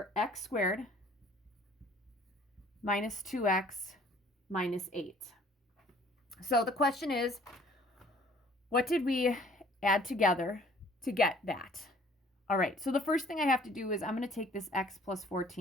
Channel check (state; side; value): normal; both; correlation 0.55